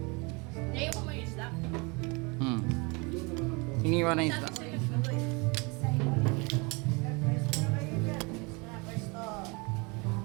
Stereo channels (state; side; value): quieter; left; 28.9 dB